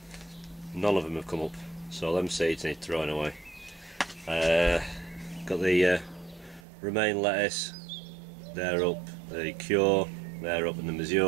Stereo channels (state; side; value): drops out; left; at 6.6 s